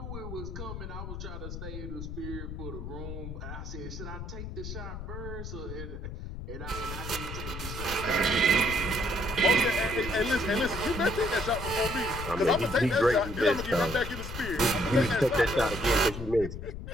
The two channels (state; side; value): noise; left; rumble, 8 dB below the sound